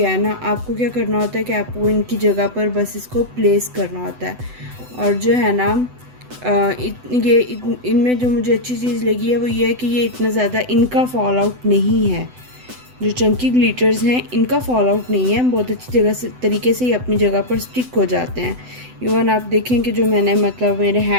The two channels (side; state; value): left; late; 7.9 ms